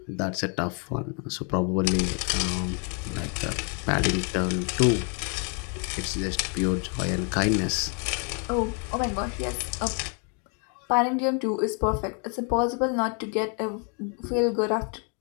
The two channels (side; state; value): right; quieter; 38.3 dB